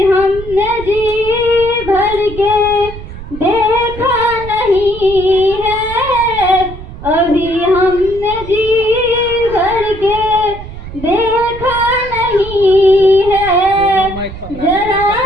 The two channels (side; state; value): right; noise; rumble, 13 dB below the sound